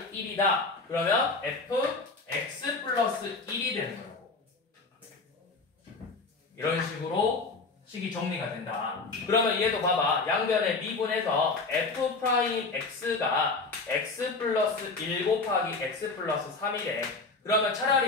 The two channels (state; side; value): quieter; right; 3.8 dB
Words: 1이다. 그러면 fx 플러스 1이 되는 거라고. 이런 식으로 식이 정리가 된다. 그러면 얘도 봐봐. 양변에 미분해서 f 프라임 x가 x 플러스 1 곱하기 x 플러스 3이래. 그러면